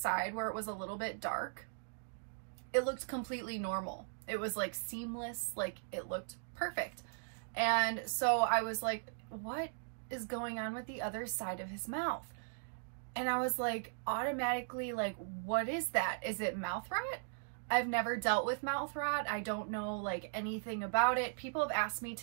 where it was a little bit dark. It looked completely normal. It was like seamless, like it looked perfect. And so I was like, what is going on with the other side of his mouth? And I was like, automatically like, what is that? Is it mouth rot? I've never dealt with mouth rot. I don't know like anything about it. People have asked me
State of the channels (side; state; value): left; silent; digital silence